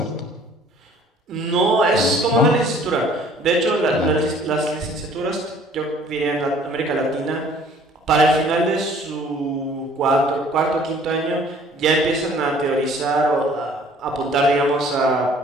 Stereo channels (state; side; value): normal; both; correlation 0.55